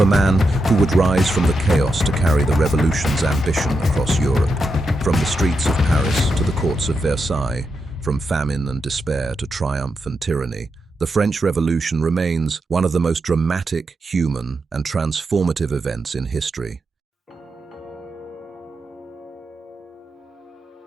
a man who would rise from the chaos to carry the revolution's ambition across Europe. From the streets of Paris to the courts of Versailles, from famine and despair to triumph and tyranny, the French Revolution remains one of the most dramatic, human, and transformative events in history.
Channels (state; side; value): normal; both; correlation 0.85